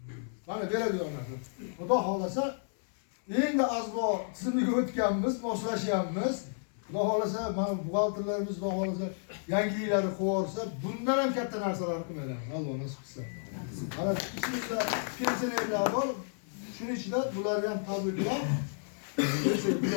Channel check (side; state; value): right; silent; 57 dB below the other